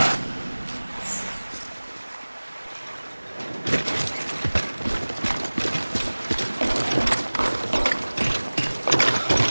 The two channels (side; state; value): both; inverted; correlation -1.00